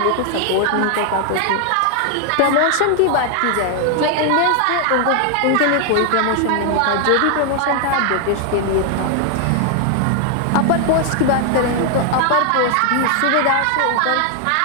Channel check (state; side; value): different; both; correlation 0.00